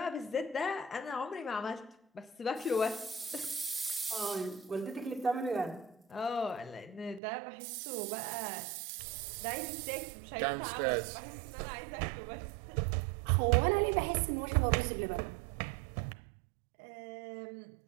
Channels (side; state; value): left; drops out; at 7.2 s